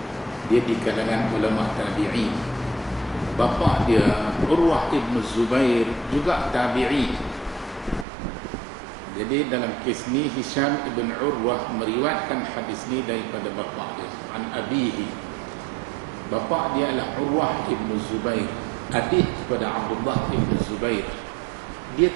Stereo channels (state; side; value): drops out; left; at 8.1 s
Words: dia di kalangan ulama tabi'in. Bapa dia Urwah ibn Zubair juga tabi'in. Jadi dalam kes ni Hisham ibn Urwah meriwayatkan hadis ni daripada bapa dia, an abihi. Bapa dia adalah Urwah ibn Zubair, adik kepada Abdullah ibn Zubair. Dia